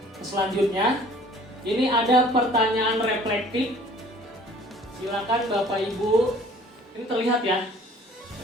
selanjutnya, ini ada pertanyaan reflektif. Silakan Bapak Ibu, ini terlihat ya,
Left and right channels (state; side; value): normal; both; correlation 0.52